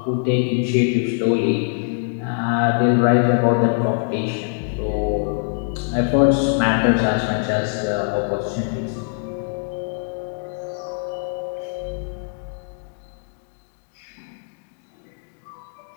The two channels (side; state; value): right; silent; 64 dB below the other